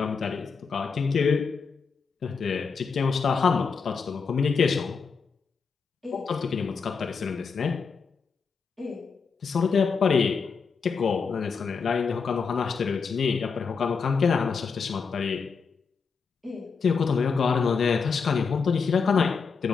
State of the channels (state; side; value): quieter; right; 5.4 dB